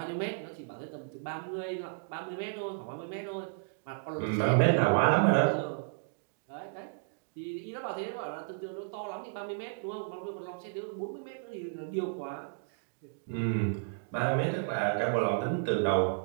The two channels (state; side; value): silent; left; digital silence